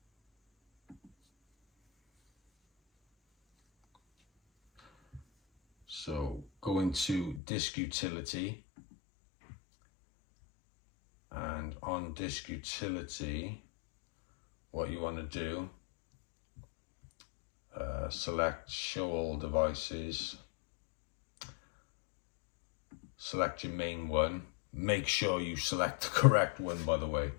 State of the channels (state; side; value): drops out; right; at 7.4 s